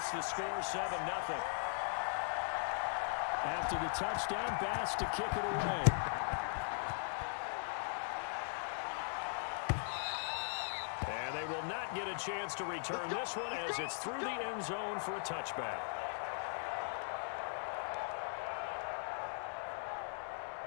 the score 7-0. After the touchdown, Bass to kick it away. And they will not get a chance to return this one as it's through the end zone for a touchback.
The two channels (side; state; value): right; silent; 51 dB below the other